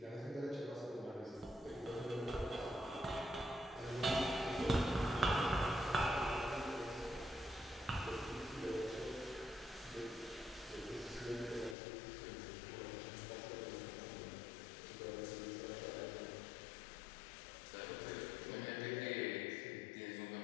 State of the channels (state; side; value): drops out; right; at 11.8 s